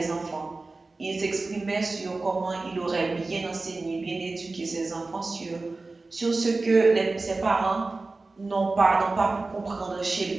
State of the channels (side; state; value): left; quieter; 3.5 dB